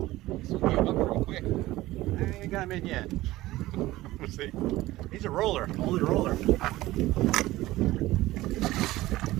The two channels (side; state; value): left; quieter; 17.3 dB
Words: So give up real quick. I ain't got him in yet. We'll see. He's a roller, only roller.